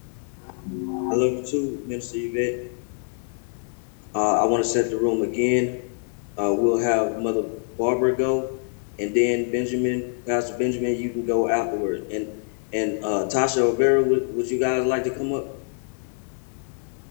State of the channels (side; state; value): right; silent; digital silence